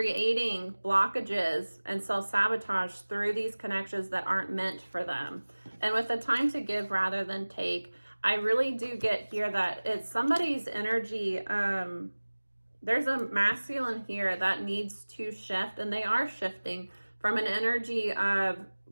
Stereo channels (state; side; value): inverted; both; correlation -1.00